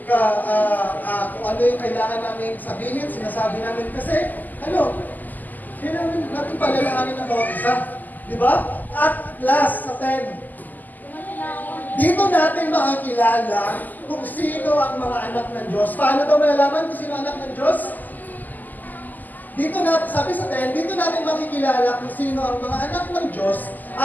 ano yung kailangan namin sabihin, sinasabi namin kasi, kailangan natin palalaanin ng bawat isa. Di ba? At last, sa 10, dito natin makakilala kung sino ang mga anak ng Diyos. Paano daw malalaman kung sino ang anak ng Diyos? Dito natin, sabi sa 10, dito natin makikilala kung sino ang mga anak ng Diyos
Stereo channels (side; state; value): right; late; 0.084 ms